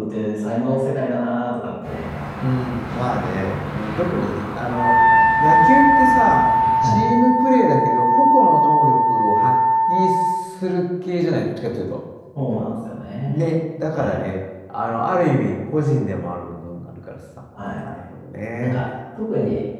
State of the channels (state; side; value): identical; both; correlation 1.00